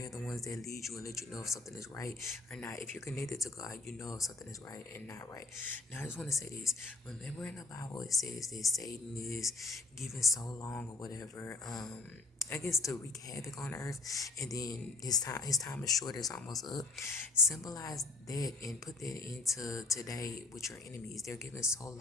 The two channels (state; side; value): quieter; right; 3.3 dB